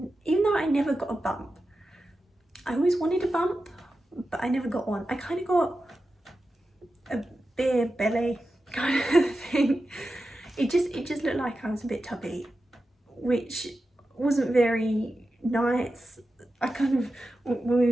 even though I never got a bump, I always wanted a bump, but I never got one. I kind of got a beer belly kind of thing. It just looked like I was a bit tubby, which wasn't very nice. I kind of, when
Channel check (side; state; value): both; normal; correlation 0.92